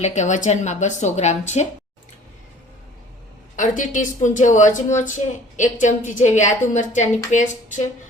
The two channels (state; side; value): normal; both; correlation 0.50